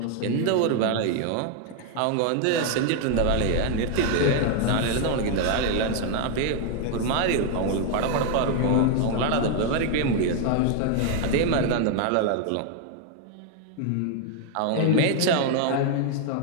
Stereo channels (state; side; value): different; both; correlation 0.00